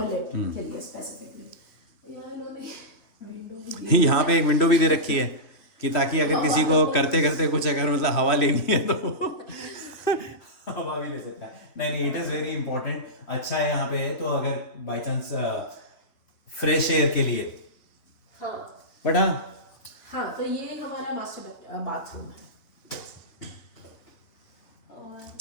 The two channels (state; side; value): late; right; 3.2 ms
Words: के लिए स्पेसिफिकली. यहाँ इन्होंने विंडो भी यहाँ पे एक विंडो भी दे रखी है कि ताकि अगर किसी को करते करते कुछ अगर मतलब हवा लेनी है तो हवा भी ले सकता है. नहीं, इट इज वेरी इंपॉर्टेंट. अच्छा है यहाँ पे है तो अगर बाई चांस फ्रेश एयर के लिए. हाँ. बट हाँ, तो ये हमारा मास्टर बाथरूम है. और